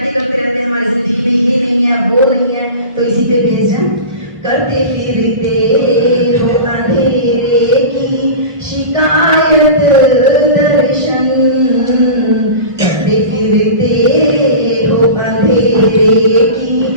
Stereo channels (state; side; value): inverted; both; correlation -0.32